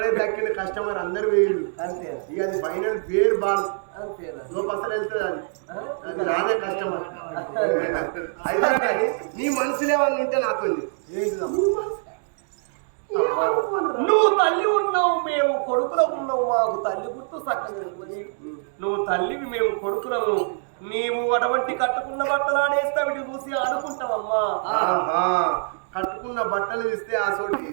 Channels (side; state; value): left; silent; digital silence